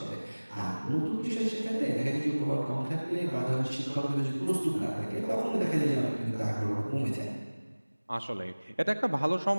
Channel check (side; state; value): both; inverted; correlation -1.00